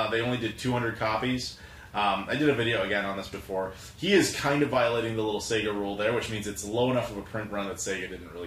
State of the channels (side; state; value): both; identical; correlation 1.00